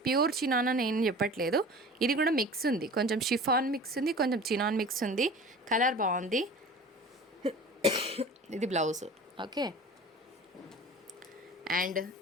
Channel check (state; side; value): normal; both; correlation 0.40